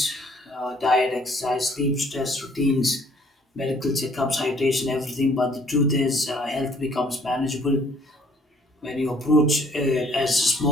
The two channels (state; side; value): normal; both; correlation 0.59